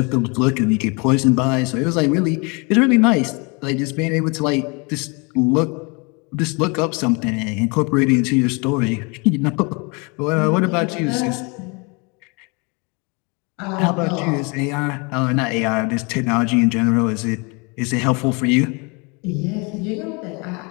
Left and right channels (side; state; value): right; quieter; 30.4 dB